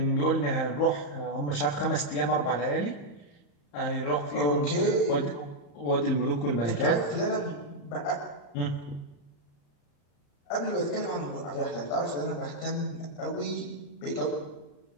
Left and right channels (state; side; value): late; right; 35 ms